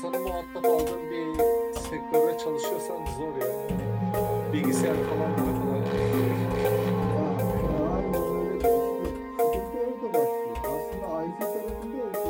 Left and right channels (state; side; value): identical; both; correlation 1.00